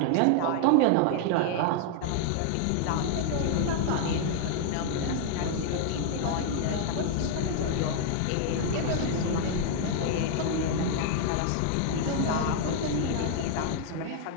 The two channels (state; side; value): different; both; correlation 0.00